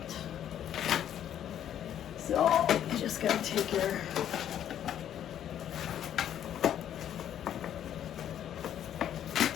So you just gotta take your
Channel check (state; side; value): quieter; right; 10.3 dB